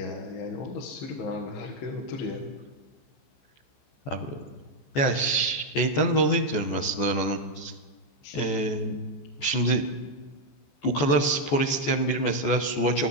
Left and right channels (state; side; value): late; right; 14 ms